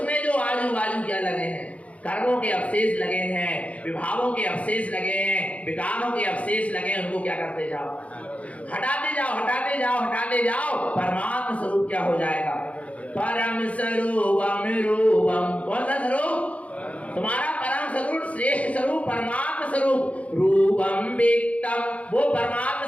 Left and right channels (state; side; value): late; right; 0.066 ms